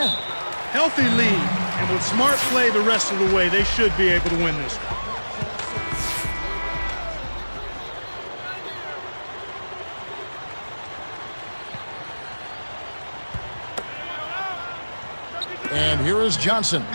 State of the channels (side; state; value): both; inverted; correlation -1.00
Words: Healthy lead, and with smart play the rest of the way, they should be able to win this one. And here is Johnson.